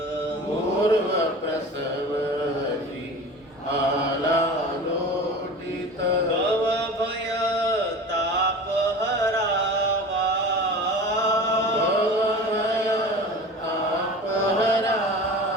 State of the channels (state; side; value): normal; both; correlation 0.36